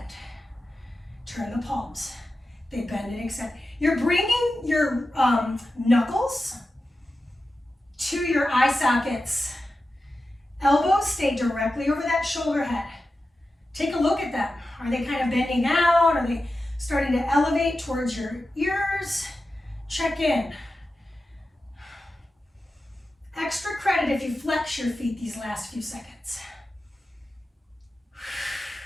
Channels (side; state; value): both; normal; correlation 0.92